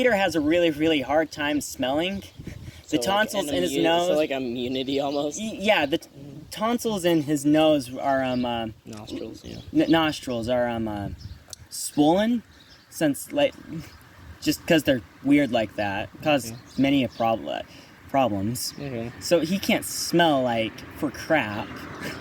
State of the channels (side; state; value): both; identical; correlation 1.00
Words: a really, really hard time smelling. The tonsils in his nose. So like immunity almost. Yeah, the tonsils in his nose are nostrils. Yeah. Nostrils are swollen, since like just because they're weird like that, cause many problems. Okay. So he can't smell like for crap.